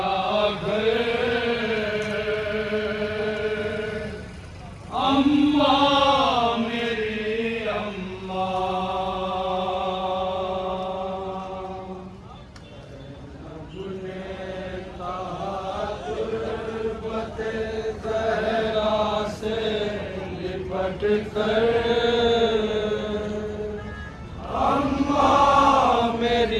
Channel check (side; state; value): both; identical; correlation 1.00